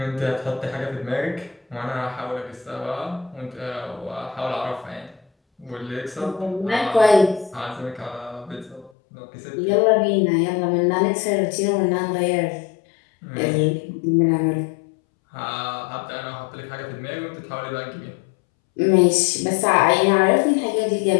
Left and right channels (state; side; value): drops out; right; at 8.9 s